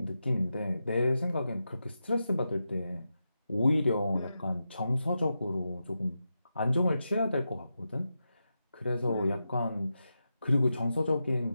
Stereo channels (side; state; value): both; inverted; correlation -0.89